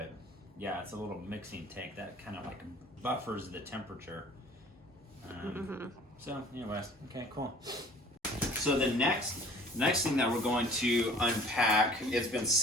yeah, it's a little mixing tank that kind of like buffers the temperature. So anyways, okay, cool. So the next thing that we're going to unpack, it's been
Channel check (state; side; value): normal; both; correlation 0.50